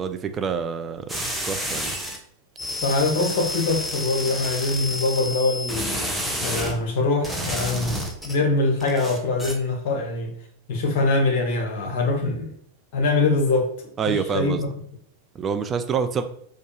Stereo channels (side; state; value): both; normal; correlation -0.04